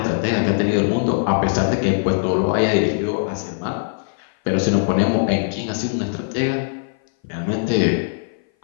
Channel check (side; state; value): right; silent; 58 dB below the other